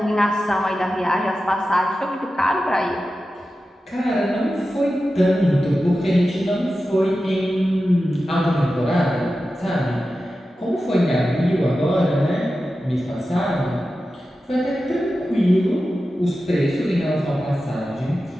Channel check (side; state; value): both; normal; correlation 0.93